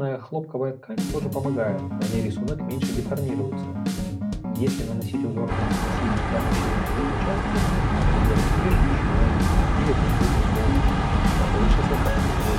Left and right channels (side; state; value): both; identical; correlation 1.00